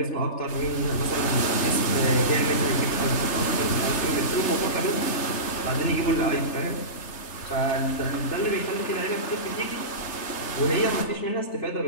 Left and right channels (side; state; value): right; late; 3.3 ms